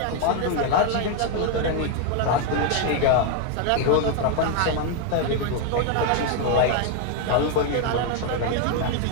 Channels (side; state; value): both; different; correlation 0.01